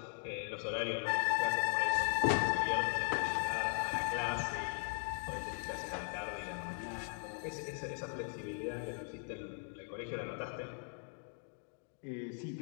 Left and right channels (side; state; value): right; silent; 52 dB below the other